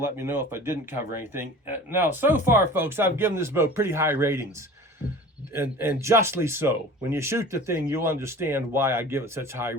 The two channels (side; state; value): both; normal; correlation 0.40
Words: let me know if I didn't cover anything. Now, so far, folks, I've given this bow pretty high ratings, and justly so. When you shoot the thing, you'll understand why I give it such high